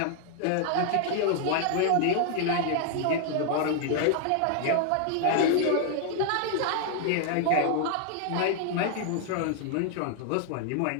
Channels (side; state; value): both; different; correlation 0.00